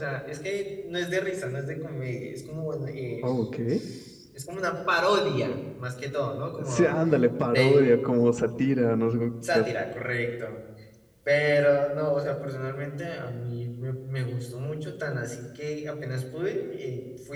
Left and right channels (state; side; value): identical; both; correlation 1.00